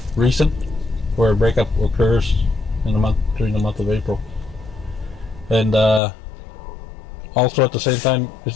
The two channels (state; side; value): drops out; right; at 6.0 s